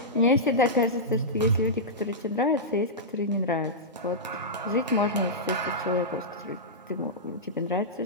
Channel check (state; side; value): normal; both; correlation -0.12